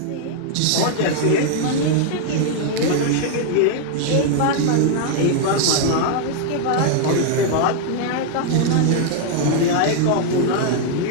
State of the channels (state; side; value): different; both; correlation 0.00